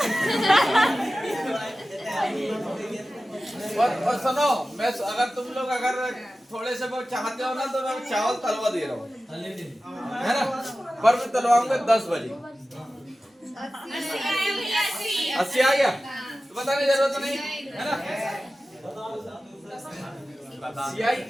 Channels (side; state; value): both; normal; correlation 0.95